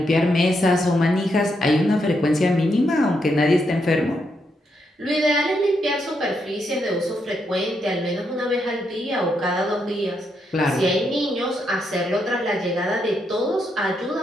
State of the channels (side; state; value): both; normal; correlation 0.80